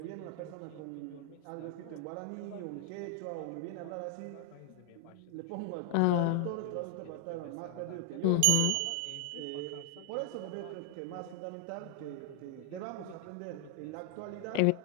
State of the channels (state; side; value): different; both; correlation 0.00